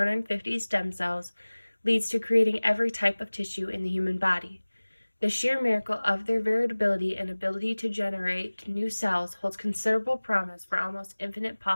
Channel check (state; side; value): inverted; both; correlation -1.00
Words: stem cells leads to creating every type of tissue in the human body. The sheer miracle of their variability and ability to generate new cells holds considerable promise for almost infinite